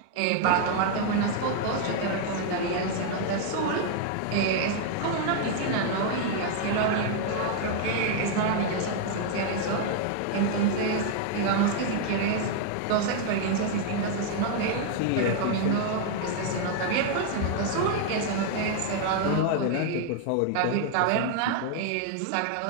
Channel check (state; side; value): different; both; correlation 0.00